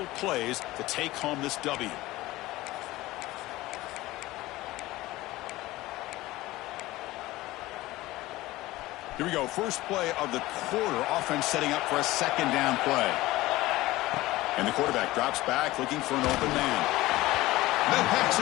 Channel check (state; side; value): quieter; right; 18.1 dB